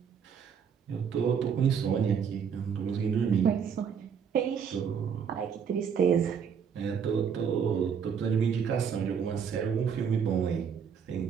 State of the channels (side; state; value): left; quieter; 7.1 dB